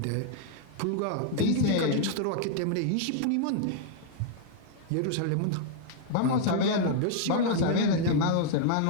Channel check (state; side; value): different; both; correlation -0.01